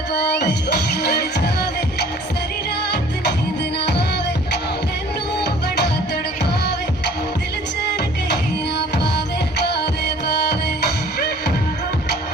पावे चौक लड़ जावे सारी रात नींद ना आवे मैनू बड़ा तड़पावे दिल चैन कहीं ना पावे पावे पावे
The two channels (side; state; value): both; normal; correlation 0.51